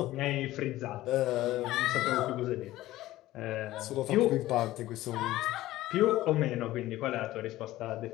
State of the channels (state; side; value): quieter; right; 16.0 dB